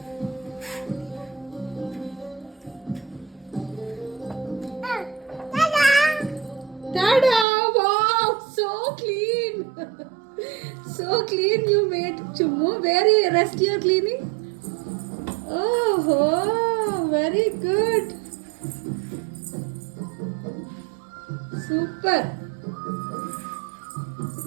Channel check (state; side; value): drops out; left; at 7.5 s